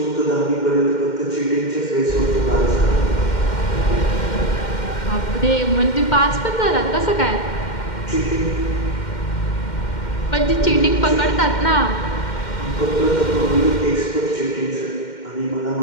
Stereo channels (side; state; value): right; late; 2.1 ms